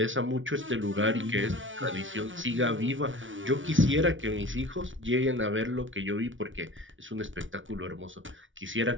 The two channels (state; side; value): late; left; 0.56 ms